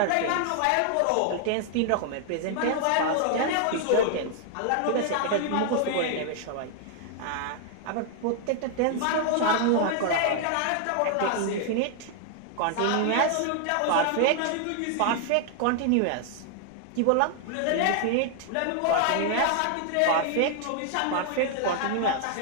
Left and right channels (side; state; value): both; different; correlation 0.00